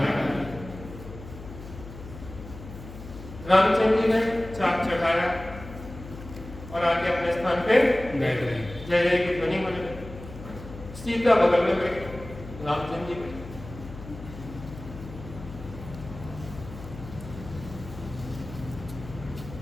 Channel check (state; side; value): noise; left; hum, 14 dB below the sound